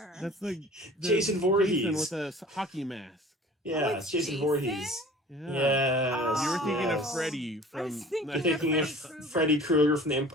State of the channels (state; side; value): normal; both; correlation 0.45